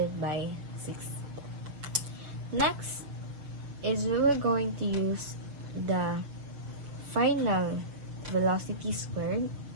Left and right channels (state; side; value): late; left; 6.4 ms